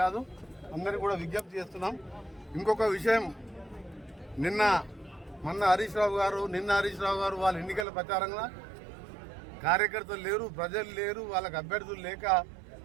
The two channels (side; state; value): left; drops out; at 7.9 s